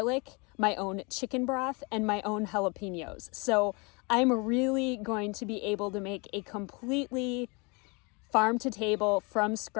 my own chicken broth, and my own jalapenos. So I'm really going to be able to make a completely farm to table from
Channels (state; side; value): quieter; right; 30.0 dB